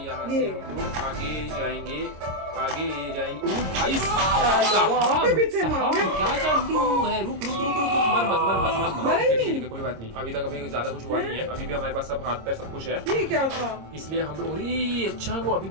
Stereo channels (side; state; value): left; late; 26 ms